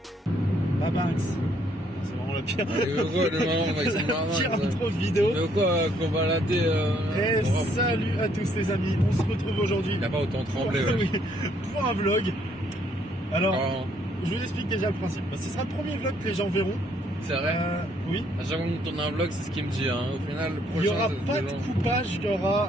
Babanks. C'est vraiment le pire. Pire intro de vidéo. Mais quoi, qu'on va latter Et salut à tous les amis, on se retrouve aujourd'hui. Il a pas autant tremblé. Pour un vlog. Alors, Oh, je vous explique déjà le principe. Ce sera le premier vlog que les gens verront. c'est vrai. Oui. À chaque fois qu'on tourne un vlog, c'est ce qu'il me dit. Hein. Au final, le prochain, Il n'y aura c'est pas de coupage, il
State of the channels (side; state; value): both; normal; correlation 0.68